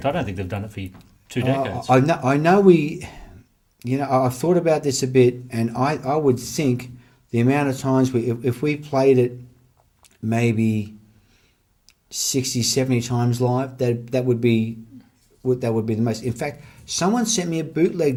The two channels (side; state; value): both; identical; correlation 1.00